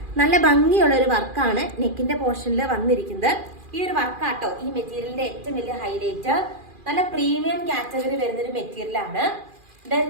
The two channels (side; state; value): left; late; 2.4 ms